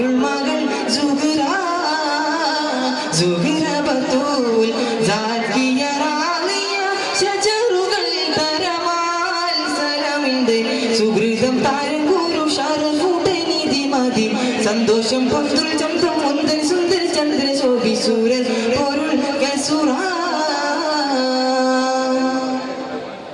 മകൾ സുഹ്റ സുഹ്റ ബത്തൂൽ സാക്കിയ റാളിയ ശജറുകൾ തരമാൽ സലമിന്റെ സുഹൃതം താരം ഗുരു ഷറഫുടൈനിധി മതി സന്തോഷം പൊന്തുൽ ചന്തം മുന്തൻ സുന്ദര ചന്ദ്ര ശോഭി സൂരൻ പൊരുൾ കസുറ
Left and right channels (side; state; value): both; identical; correlation 1.00